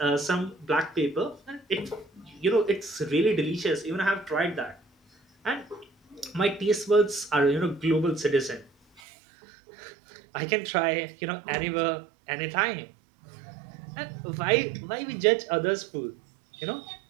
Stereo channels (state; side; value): drops out; left; at 9.0 s